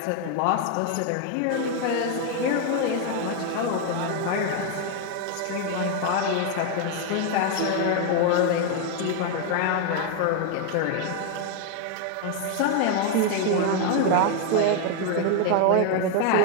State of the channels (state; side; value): different; both; correlation 0.01